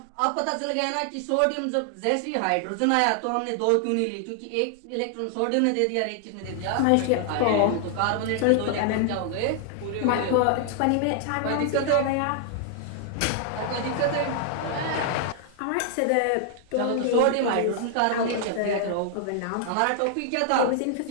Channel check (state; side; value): different; both; correlation 0.00